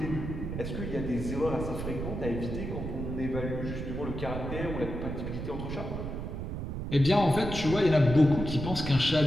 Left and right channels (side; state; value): right; noise; rumble, 5 dB below the sound